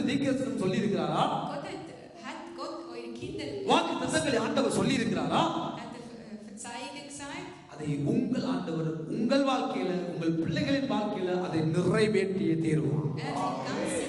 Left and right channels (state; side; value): identical; both; correlation 1.00